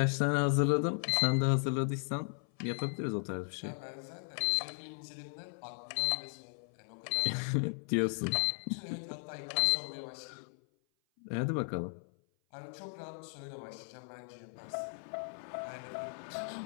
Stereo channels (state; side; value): silent; right; 54 dB below the other